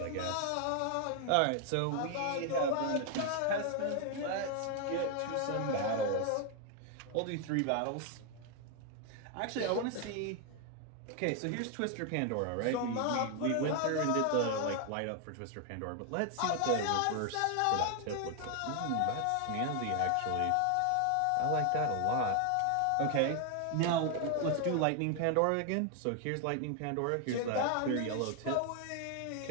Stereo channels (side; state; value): both; different; correlation 0.00